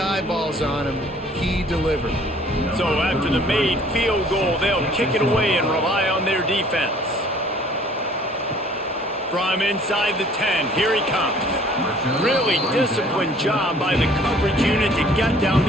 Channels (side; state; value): both; normal; correlation 0.55